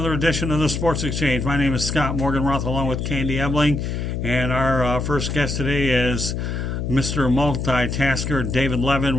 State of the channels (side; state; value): left; noise; hum, 3 dB below the sound